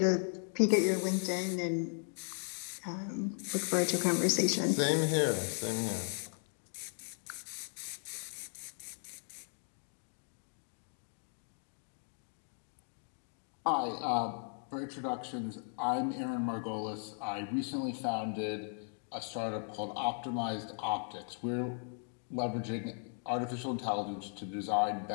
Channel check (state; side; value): silent; right; 53 dB below the other